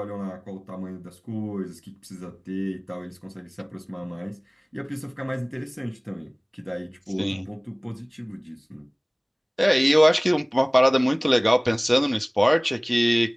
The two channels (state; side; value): identical; both; correlation 1.00